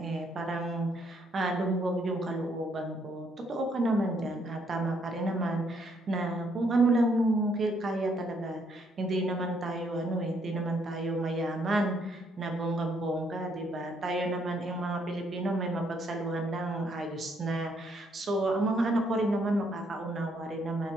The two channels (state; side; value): normal; both; correlation 0.71